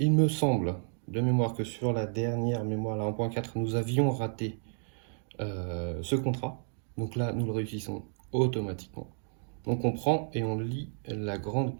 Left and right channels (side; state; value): left; silent; digital silence